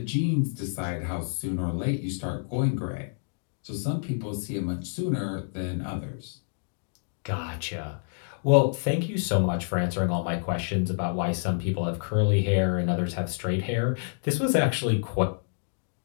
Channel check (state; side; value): silent; right; digital silence